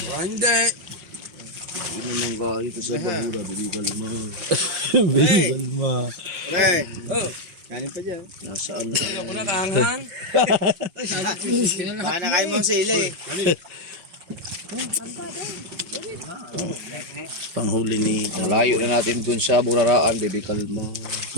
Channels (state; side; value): late; left; 5.2 ms